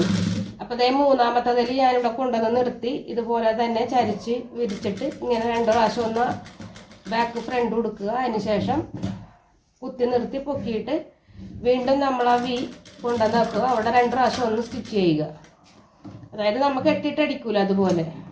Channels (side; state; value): both; identical; correlation 1.00